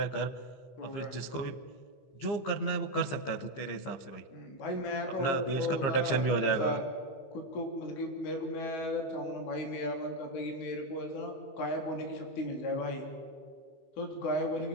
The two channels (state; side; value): late; right; 15 ms